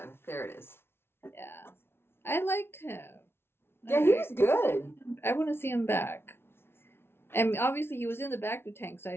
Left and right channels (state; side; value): late; right; 0.12 ms